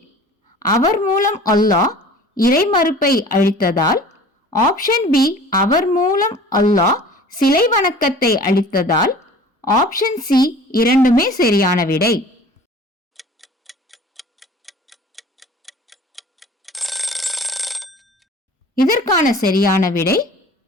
அவர் மூலம் அல்லாஹ் இறைமறுப்பை அழித்ததால், ஆப்ஷன் பி அவர் மூலம் அல்லாஹ் சிலை வணக்கத்தை அழித்ததால், ஆப்ஷன் சி இரண்டுமே சரியான விடை. இதற்கான சரியான விடை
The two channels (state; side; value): normal; both; correlation 0.44